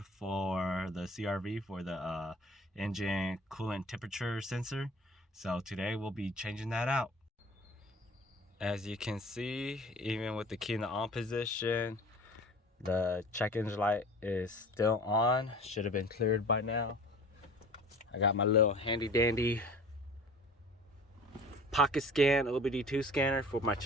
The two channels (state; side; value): normal; both; correlation 0.43